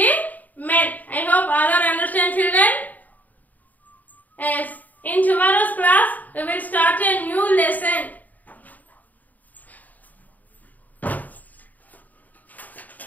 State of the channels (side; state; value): right; late; 0.080 ms